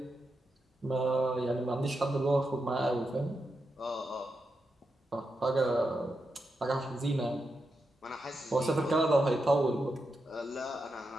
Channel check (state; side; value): normal; both; correlation 0.86